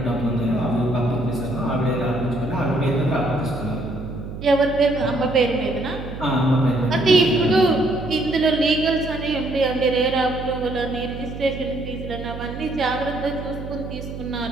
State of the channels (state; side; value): noise; right; hum, 10 dB below the sound